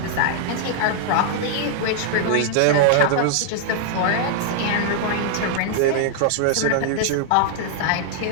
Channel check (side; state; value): both; different; correlation 0.00